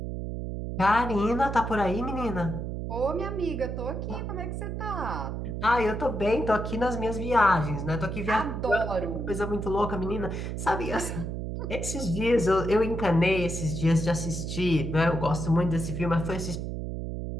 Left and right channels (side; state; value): right; noise; hum, 4 dB below the sound